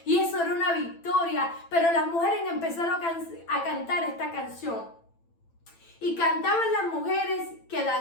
y eso era una victoria. Pero las mujeres empezaron a cantar esta canción y cantaban las mujeres que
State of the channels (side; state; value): right; late; 8.9 ms